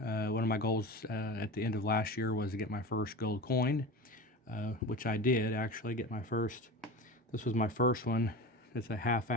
of my goals at the end of last year was to get my first gold coin, which I did actually get my first. This was my first one. It's a half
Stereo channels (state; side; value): normal; both; correlation 0.29